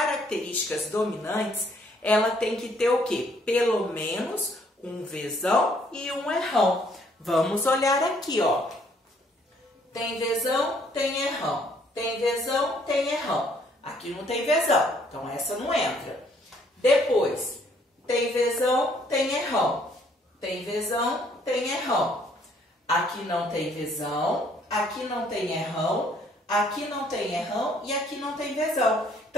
dominantes, ela tem que ter o quê? Pelo menos um vezão e um errão. Vamos olhar aqui, ó. Tem vezão, tem errão. Tem vezão, tem errão. Aqui não tem vezão, então essa não entra. Depois, tem vezão, tem errão. Tem vezão, tem errão. Aqui não tem vezão, aqui não tem errão, aqui não tem errão e aqui não tem vezão.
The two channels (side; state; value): both; normal; correlation 0.64